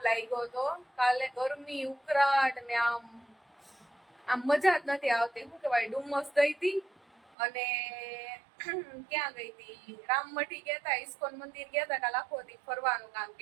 લાગ્યો હતો કાલે ગરમી ઉકળાટ ને આમ મજા જ નથી આવતી શું કહેવાય ડુમસ ગઈ હતી અને ક્યાં ગઈ હતી રામમઠી ગયા હતા ઇસ્કોન મંદિર ગયા હતા કાલે આખો દી ફરવાનું કામ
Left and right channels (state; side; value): drops out; left; at 7.3 s